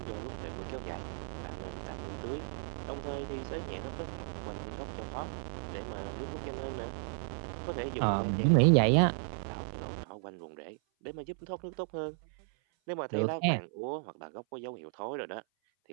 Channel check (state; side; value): silent; left; 55 dB below the other